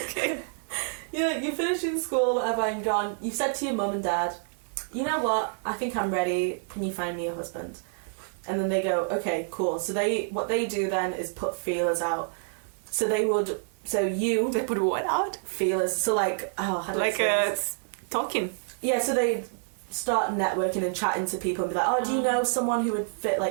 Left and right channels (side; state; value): left; silent; digital silence